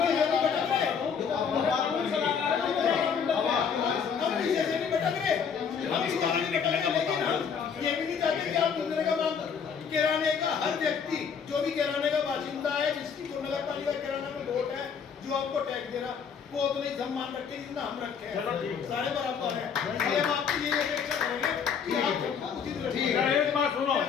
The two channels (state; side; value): quieter; right; 6.7 dB